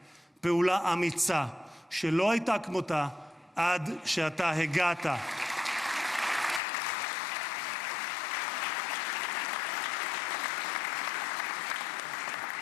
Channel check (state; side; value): drops out; right; at 6.6 s